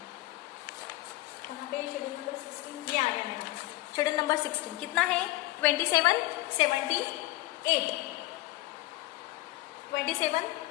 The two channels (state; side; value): quieter; right; 18.3 dB